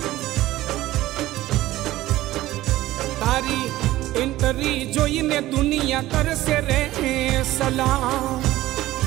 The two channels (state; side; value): quieter; left; 16.0 dB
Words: तारी इंटरी जोईने दुनिया करसे रे सलाम